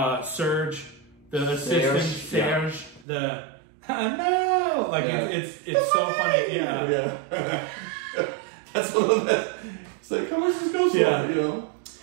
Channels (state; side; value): drops out; left; at 3.1 s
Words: Serge, the assistant, Serge, no! Like, it's so funny. Yeah. That's one of the best. It's like, how much does this go for, you know?